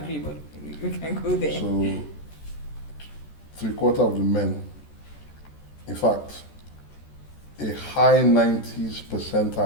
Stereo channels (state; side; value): late; right; 14 ms